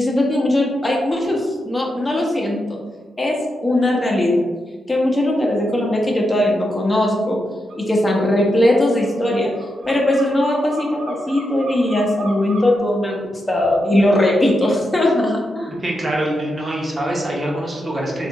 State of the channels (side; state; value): both; normal; correlation 0.85